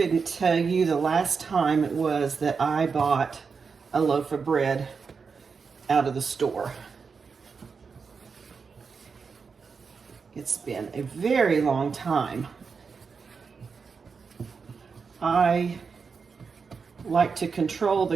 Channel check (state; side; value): quieter; left; 5.4 dB